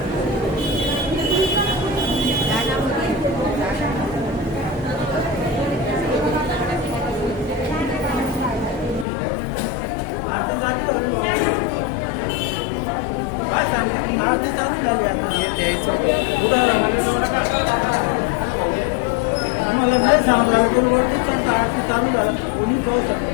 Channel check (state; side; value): drops out; right; at 9.1 s